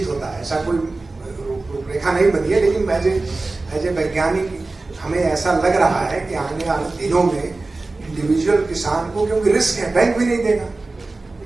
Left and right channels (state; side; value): quieter; left; 3.4 dB